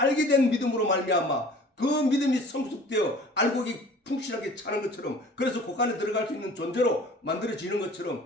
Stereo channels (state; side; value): normal; both; correlation 0.47